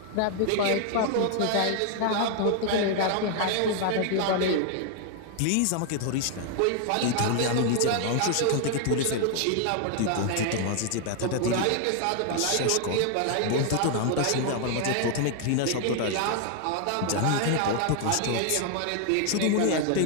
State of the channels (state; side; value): different; both; correlation 0.00